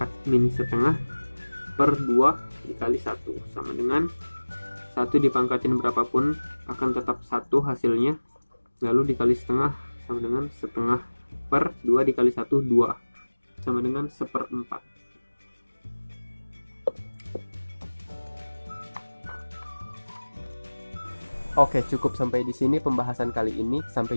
min setengah per 2 dikali 1 sama dengan 1 dipangkatin berapapun akan tetap 1 hasilnya, lalu dikali setengah sama dengan setengah per 2 dikali 1 2 sama dengan 1/4. Oke, cukup sampai di sini pembahasan kali ini. Sampai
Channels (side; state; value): both; inverted; correlation -1.00